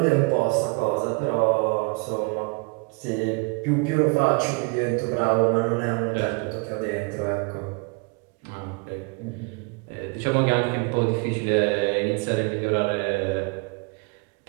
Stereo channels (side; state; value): left; quieter; 31.4 dB